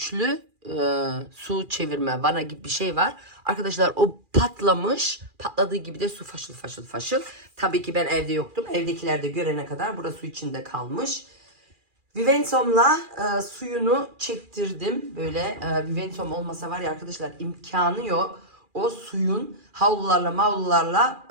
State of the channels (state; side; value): late; left; 2.4 ms